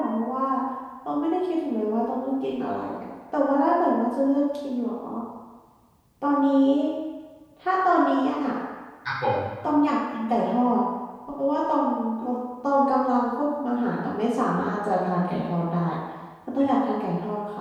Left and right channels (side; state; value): both; identical; correlation 1.00